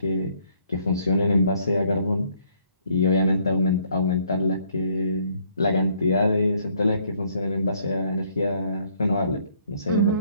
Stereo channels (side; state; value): both; inverted; correlation -0.66